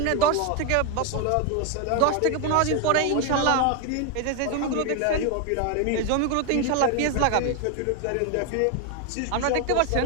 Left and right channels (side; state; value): both; different; correlation 0.01